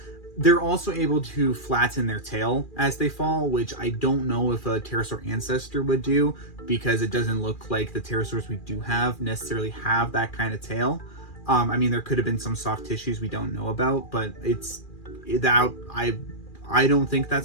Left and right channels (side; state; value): right; late; 2.4 ms